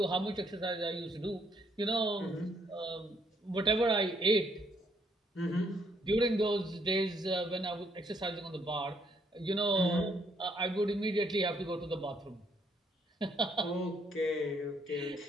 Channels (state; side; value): normal; both; correlation 0.70